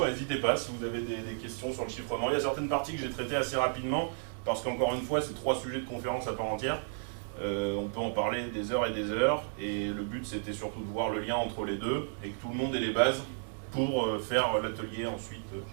n'hésitez pas si vous avez des questions sur le chiffrement. Il y a certaines parties que j'ai traitées assez rapidement, parce qu'encore une fois, c'est 3 sujets de conférence à part entière. On peut en parler des heures, et le but c'était surtout de voir le lien entre les deux, et que tout le monde ait les bases pour faire l'atelier ensuite,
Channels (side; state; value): left; silent; digital silence